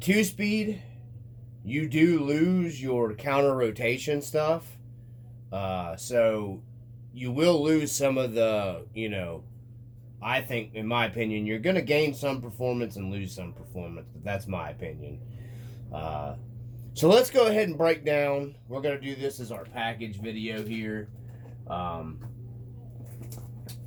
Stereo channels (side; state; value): both; identical; correlation 1.00